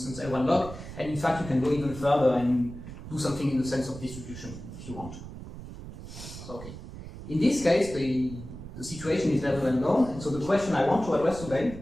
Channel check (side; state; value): right; noise; rumble, 12 dB below the sound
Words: L1 log, and in fact you can go even further and do something in the sense of distribution if you want to. So okay. In this case, the situation is very well known, and so the question I want to address today